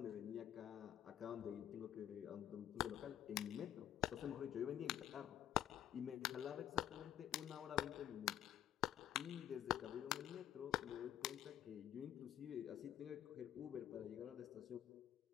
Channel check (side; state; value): right; quieter; 11.0 dB